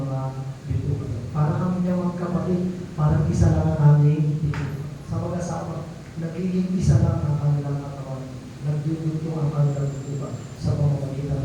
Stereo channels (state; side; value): identical; both; correlation 1.00